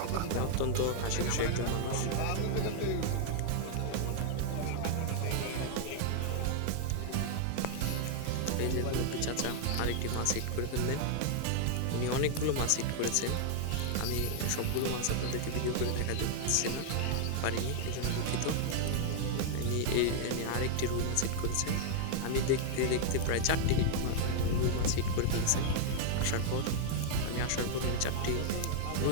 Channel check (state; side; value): different; both; correlation 0.00